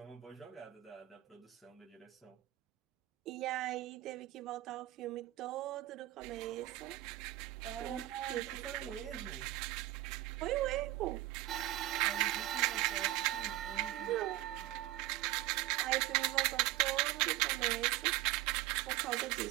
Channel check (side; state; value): left; quieter; 16.1 dB